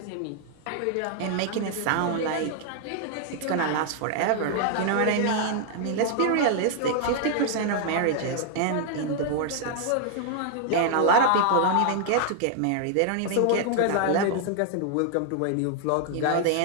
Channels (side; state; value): both; different; correlation 0.00